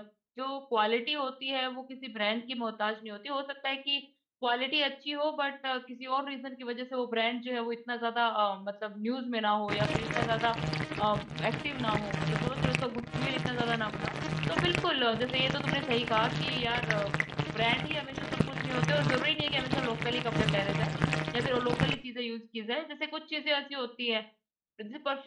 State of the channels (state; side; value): identical; both; correlation 1.00